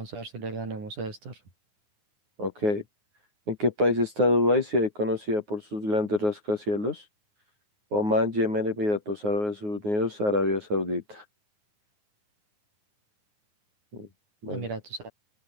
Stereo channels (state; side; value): late; left; 9.5 ms